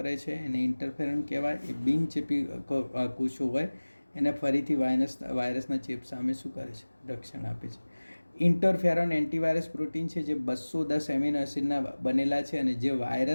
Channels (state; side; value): inverted; both; correlation -1.00